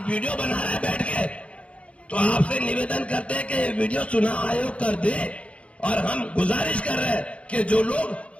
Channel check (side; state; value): right; late; 0.062 ms